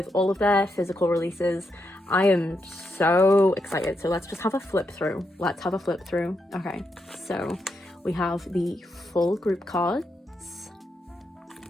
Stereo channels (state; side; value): normal; both; correlation 0.82